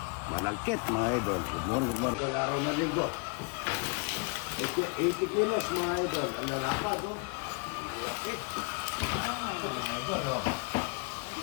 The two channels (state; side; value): quieter; right; 32.5 dB